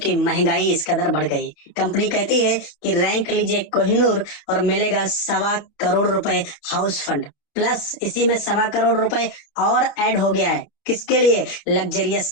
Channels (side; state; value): right; late; 29 ms